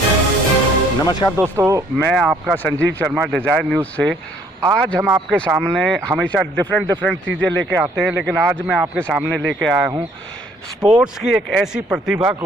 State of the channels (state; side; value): normal; both; correlation 0.62